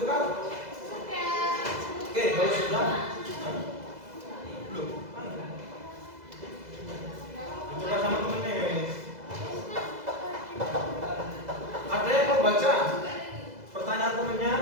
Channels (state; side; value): late; left; 2.0 ms